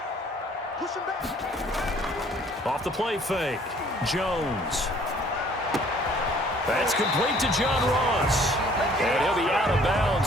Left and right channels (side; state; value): both; normal; correlation 0.57